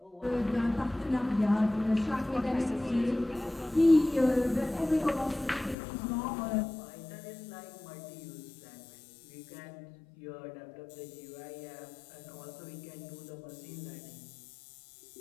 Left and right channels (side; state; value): right; drops out; at 5.8 s